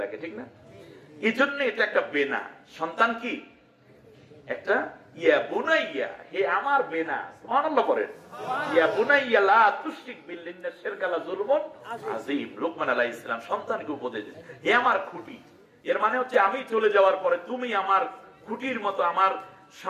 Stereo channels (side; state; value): both; identical; correlation 1.00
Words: রাখে, ঠিক না? এই জন্য এটা একটা বেনা। সন্তান কি একটা ইয়া বুনাইয়া, হে আমার বেনা। সুবহানাল্লাহ বলেন। ইয়া বুনাইয়া লা তুশরিক বিল্লাহি ইন্না শিরকা লা যুলমুন আযীম। লোকমান আলাইহিস সালাম সন্তানকে উপদেশ দিয়েছেন, হে আমার খুঁটি। এর মানে হচ্ছে আমি চলে যাওয়ার পরে তুমি আমার খুঁটির মতো আমার